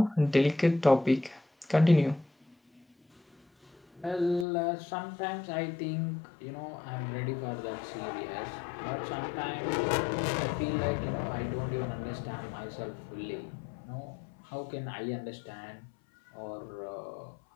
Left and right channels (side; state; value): right; drops out; at 4.5 s